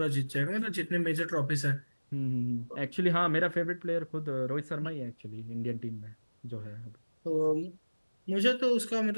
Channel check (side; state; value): both; inverted; correlation -1.00